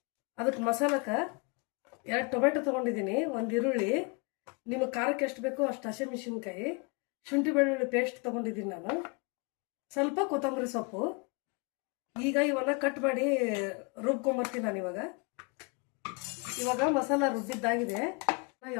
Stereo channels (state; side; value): quieter; right; 31.5 dB